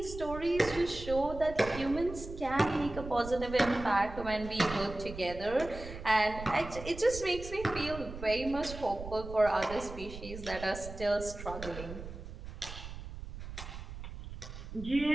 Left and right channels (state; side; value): noise; right; rumble, 11 dB below the sound